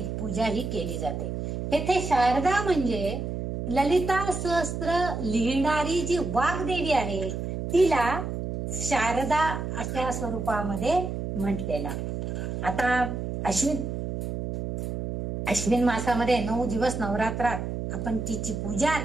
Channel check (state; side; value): noise; right; hum, 4 dB below the sound